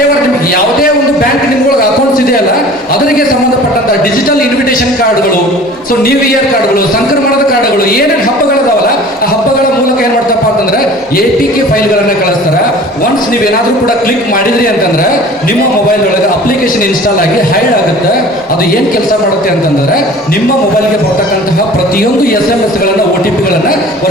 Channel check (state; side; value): normal; both; correlation 0.44